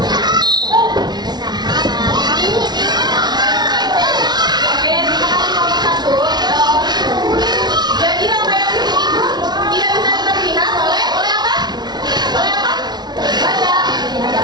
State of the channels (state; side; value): late; left; 0.20 ms